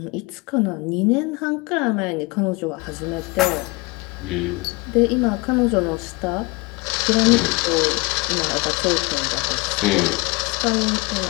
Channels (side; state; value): right; quieter; 25.6 dB